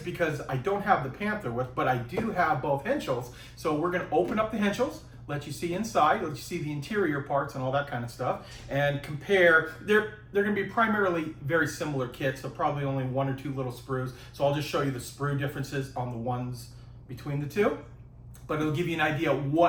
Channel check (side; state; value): both; identical; correlation 1.00